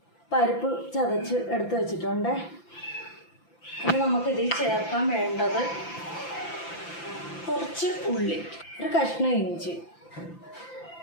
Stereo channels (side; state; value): right; late; 5.9 ms